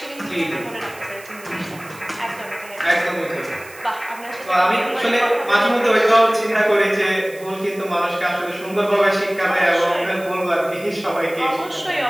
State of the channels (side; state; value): right; noise; hiss, 20 dB below the sound